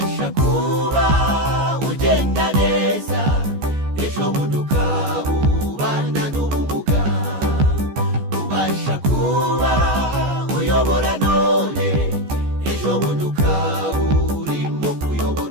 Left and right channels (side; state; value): left; late; 14 ms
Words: kuba ugenda neza, ejo bundi ukaba ubana n'ubumuga. Ubasha kuba uyobora none, ejo bundi ukaba urimo